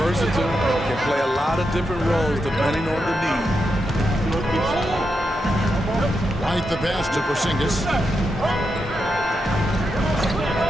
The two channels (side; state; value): both; normal; correlation 0.85